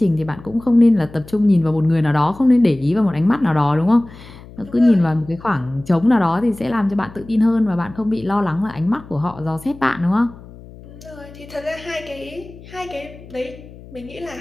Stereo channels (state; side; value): noise; left; hum, 19 dB below the sound